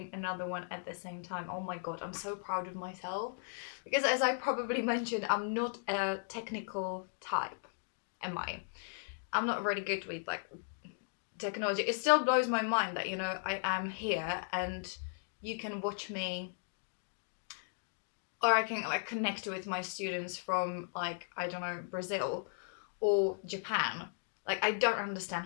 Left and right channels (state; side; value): silent; right; digital silence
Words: another one at the same time. Oh my god, I'm so proud of myself. Because as I probably mentioned, I'm not a technical type, am I? I'm not really good with like technology. It still blows my mind that, I am here and you can watch me, or I can like connect with my students from like, I don't know, Brazil or Japan. Like, I don't